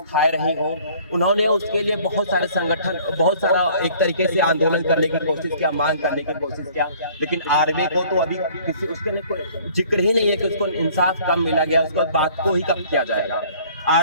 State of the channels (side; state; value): both; inverted; correlation -0.54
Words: रही हो। उन्होंने उसके लिए बहुत सारे संगठन, बहुत सारा एक तरीके से आंदोलन करने की कोशिश किया, मांग करने की कोशिश किया, लेकिन आरवे को तो अभी किसी उसके कोई जिक्र ही नहीं है कि उसको इंसाफ कब मिला गया, उसको बात को ही कब किया जाएगा।